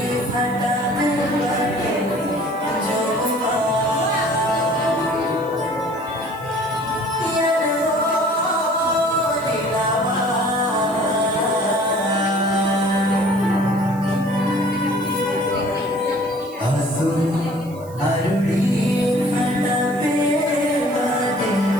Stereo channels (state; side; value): noise; right; hiss, 23 dB below the sound